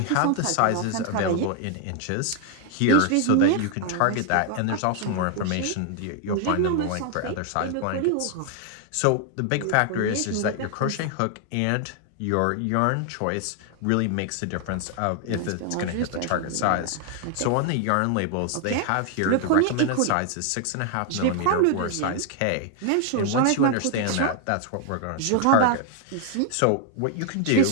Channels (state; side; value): different; both; correlation 0.00